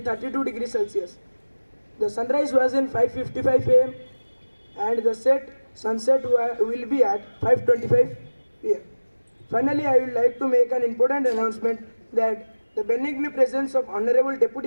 degrees Celsius. The sunrise was in 5:55 am and the sunset will be at 5:25 pm. Finally, I would like to make an important announcement that the benign presence of Honorable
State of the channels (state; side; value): inverted; both; correlation -1.00